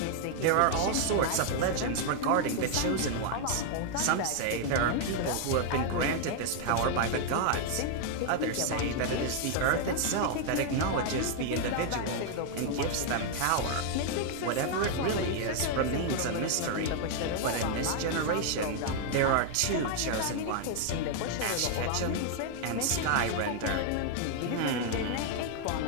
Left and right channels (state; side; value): different; both; correlation 0.00